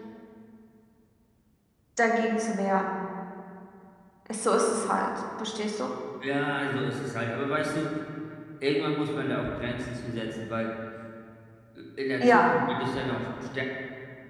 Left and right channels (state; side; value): identical; both; correlation 1.00